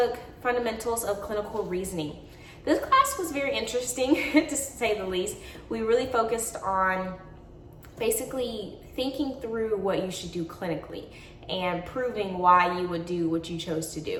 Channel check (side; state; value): both; identical; correlation 1.00